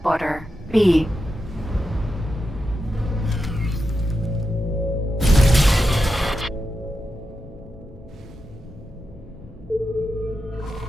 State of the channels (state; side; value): normal; both; correlation 0.88